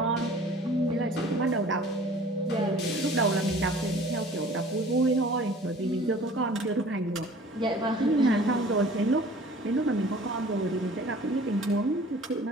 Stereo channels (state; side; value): normal; both; correlation 0.48